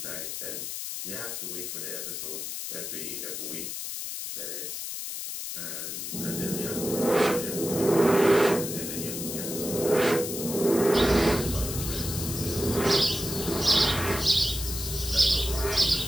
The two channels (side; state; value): left; noise; hiss, 6 dB below the sound